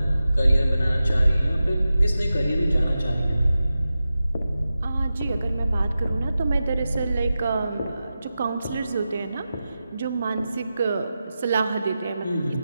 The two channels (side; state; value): both; inverted; correlation -0.93